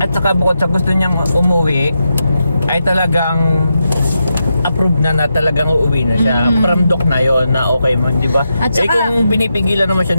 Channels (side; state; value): both; inverted; correlation -0.86